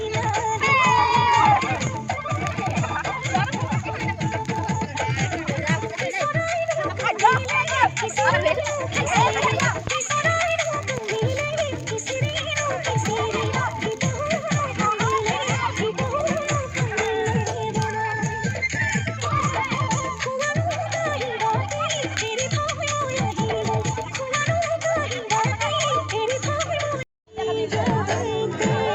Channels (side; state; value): both; identical; correlation 1.00